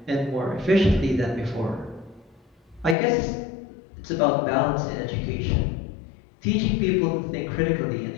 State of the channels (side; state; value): right; drops out; at 3.0 s